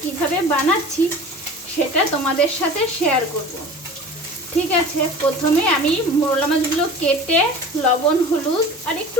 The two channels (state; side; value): normal; both; correlation 0.39